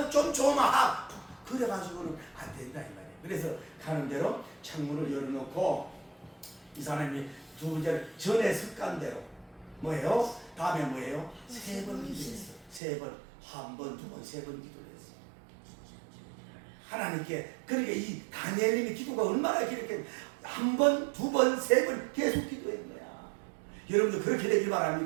좀 그래가지고는 안 된다 이 말이에요. 그래서 가는 대로 창문을 열어놓고 이 사람이 두 번째 전에 습관대로 뭐예요? 다음에 뭐예요? 3번 기도했어. 3번, 한 번, 두 번, 3번 기도를 했어. 하나님께. 그러니까 이 다니엘님의 기도가 얼마나 이렇게 한 번, 두 번, 3번 계속 기도했는 거야. 여러분도 그렇게 되길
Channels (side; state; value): left; drops out; at 12.8 s